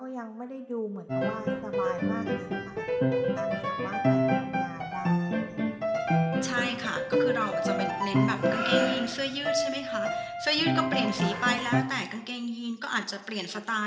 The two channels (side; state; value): both; identical; correlation 1.00